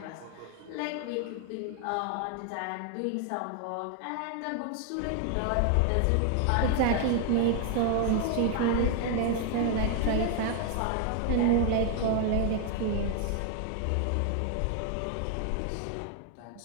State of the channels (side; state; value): both; different; correlation 0.00